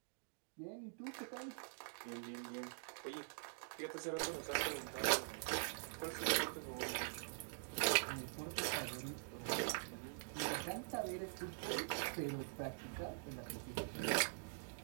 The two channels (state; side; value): silent; left; digital silence